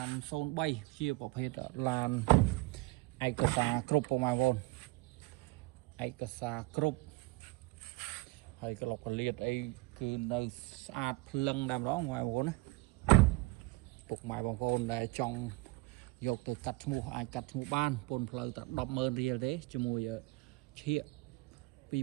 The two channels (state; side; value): quieter; left; 22.7 dB